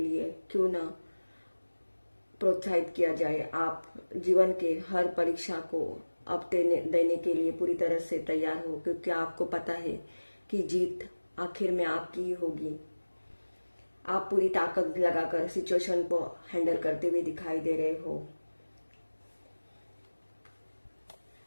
क्यों ना प्रोत्साहित किया जाए, आप जीवन के हर परीक्षा को अब देने के लिए पूरी तरह से तैयार हो, क्योंकि आपको पता है कि जीत आखिर में आपकी ही होगी। आप पूरी ताकत लगाकर सिचुएशन को हैंडल करते हुए दिखाई दे रहे हो।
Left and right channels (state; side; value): inverted; both; correlation -1.00